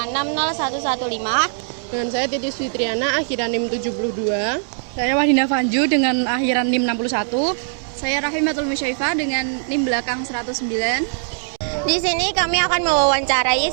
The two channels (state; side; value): silent; left; 65 dB below the other